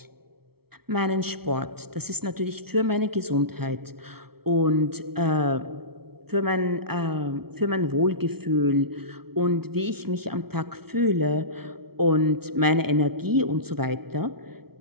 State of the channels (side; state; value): left; late; 0.95 ms